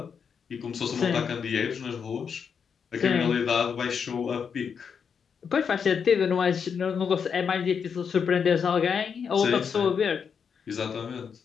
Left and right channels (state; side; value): quieter; right; 6.7 dB